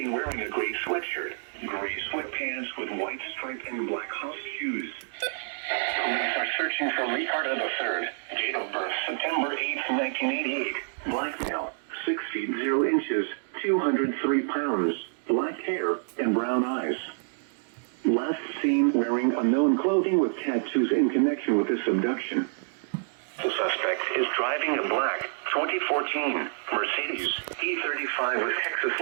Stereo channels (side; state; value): left; silent; digital silence